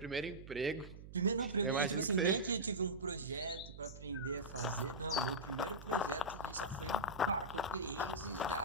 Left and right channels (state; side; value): noise; right; hum, 14 dB below the sound